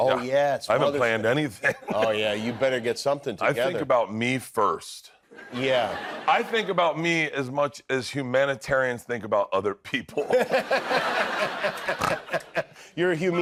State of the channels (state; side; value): identical; both; correlation 1.00